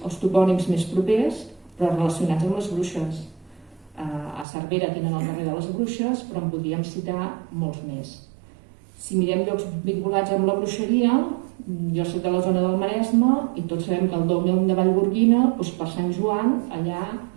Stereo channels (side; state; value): left; drops out; at 4.5 s